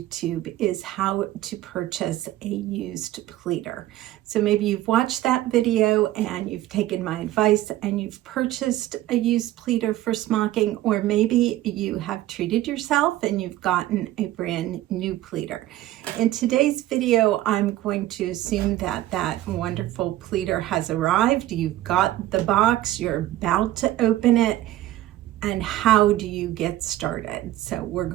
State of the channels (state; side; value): quieter; left; 14.9 dB